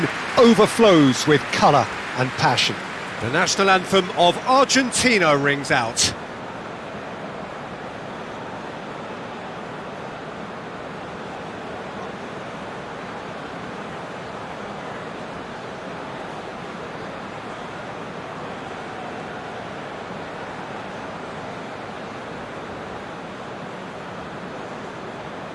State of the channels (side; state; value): both; identical; correlation 1.00